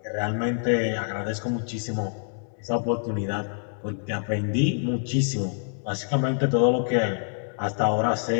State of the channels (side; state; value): right; silent; digital silence